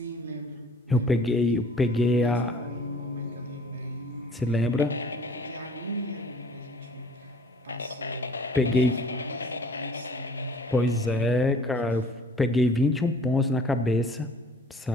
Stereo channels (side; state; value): both; normal; correlation 0.52